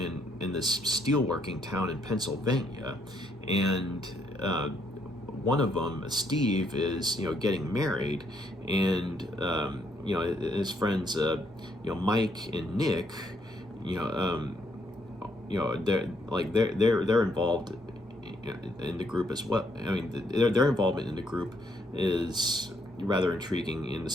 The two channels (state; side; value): normal; both; correlation 0.72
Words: this steelworking town in Pennsylvania, and one of them, Steve, is getting married, and his friends, Mike and Nick, you know, they're involved in the group as well. I mean, their involvement in the group is rather intriguing in the